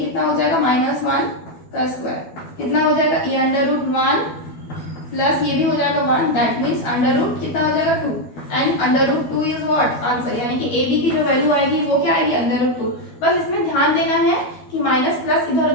हो जाएगा, -1 का स्क्वायर, कितना हो जाएगा, ये √1 प्लस ये भी हो जाएगा 1, दैट मीन्स अंडर रूट कितना हो जाएगा 2, एंड √2 इज व्हाट, आंसर, यानी कि ए बी की जो वैल्यू आएगी वो क्या आएगी, √2। बस इसमें ध्यान देना है कि माइनस प्लस इधर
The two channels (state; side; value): late; right; 12 ms